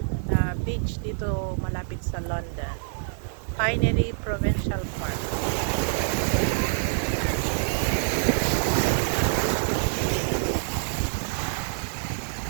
na beach dito malapit sa London. Pinery Provincial Park.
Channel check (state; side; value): silent; left; digital silence